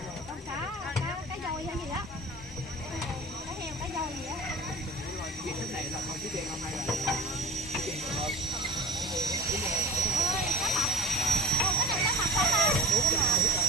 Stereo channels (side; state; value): both; normal; correlation 0.39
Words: Con cá dồi hay gì á. Cá heo, cá dồi gì á. Cái này là không chỉ tiền không hay là cá mập. Cái này cá mập không ta?